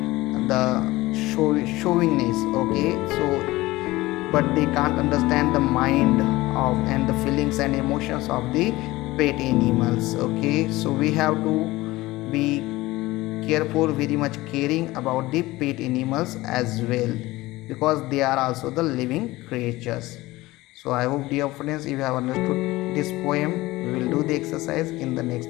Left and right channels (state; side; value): quieter; right; 19.0 dB